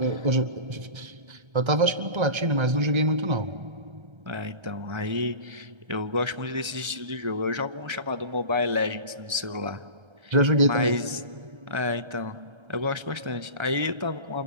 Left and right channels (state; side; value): late; left; 1.3 ms